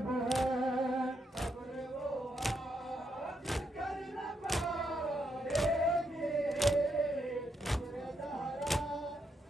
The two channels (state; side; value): normal; both; correlation 0.79